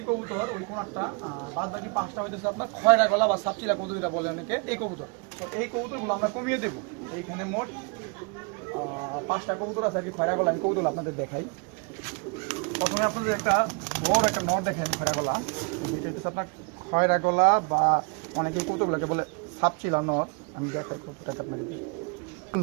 কবুতর, ওই কোনারটা, বাদ বাকি 5টা হইতেছে আপনার খয়রা গলা বা সাপচিলা কবুতর যেটা বলে অনেকে, এই কবুতর। তো এই কবুতরগুলো আমরা কমিয়ে দেবো। এইখানে মোট 5টা কবুতর আছে আর কি খয়রা গলা। আমি কবুতর আপনাদের দেখাই। প্রথমে আপনাদের একটা বড় একটা নর দেখেন খয়রা গলা। এটা হচ্ছে আপনার খয়রা গলা বা অনেকে কবুতরগুলোকে বলে সাপচিলা নর। আমি দেখাই কবুতরটা আপনাদের।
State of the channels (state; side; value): quieter; left; 32.4 dB